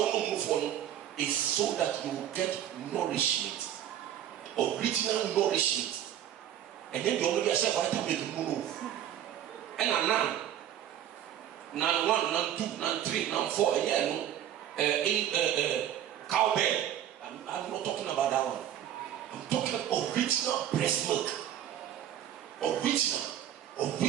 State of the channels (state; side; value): quieter; left; 10.9 dB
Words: move on is so that you will get nourishment, original nourishment. And then you only get vitamin move. And now, now 1, now 2, now 3, now 4, cowbell. I'm not talking about that one. I'm talking original breast milk. Original